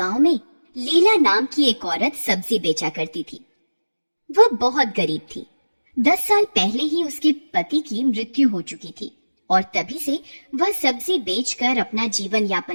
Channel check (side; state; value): both; inverted; correlation -1.00